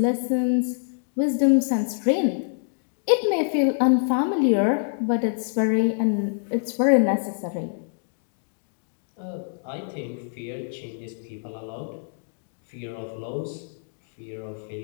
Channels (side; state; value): right; silent; digital silence